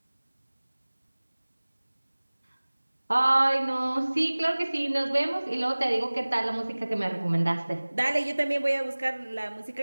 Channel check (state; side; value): inverted; both; correlation -1.00